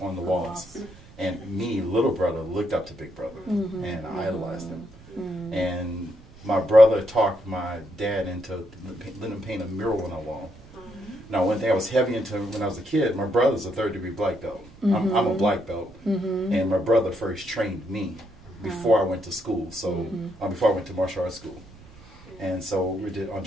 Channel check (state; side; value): noise; right; rumble, 21 dB below the sound